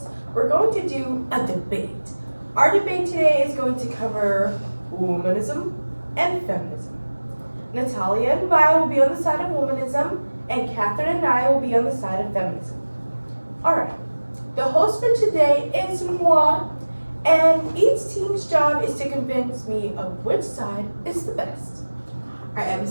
we're going to do a debate. Our debate today is going to cover womanism and feminism. Natalia and Vi will be on the side of womanism, and Catherine and I will be on the side of feminism. Alright, the host for today is moi, and each team's job is to convince me of which side is the best. Our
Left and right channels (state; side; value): inverted; both; correlation -1.00